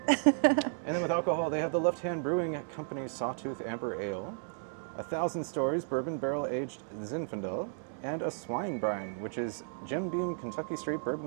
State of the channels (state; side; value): silent; left; digital silence